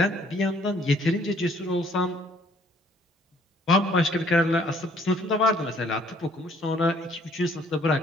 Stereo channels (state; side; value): normal; both; correlation 0.61